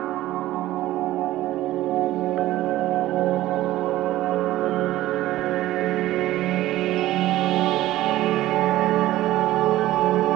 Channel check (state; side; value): quieter; left; 15.5 dB